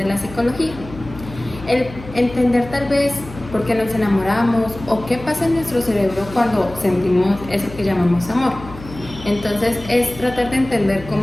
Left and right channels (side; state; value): left; noise; hum, 15 dB below the sound